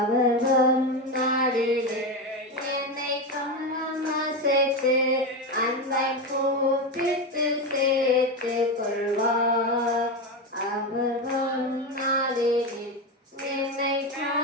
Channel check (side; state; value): both; normal; correlation 0.15